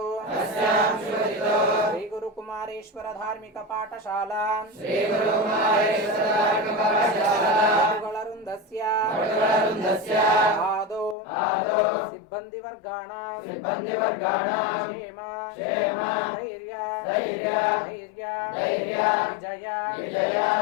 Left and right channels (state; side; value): drops out; right; at 11.2 s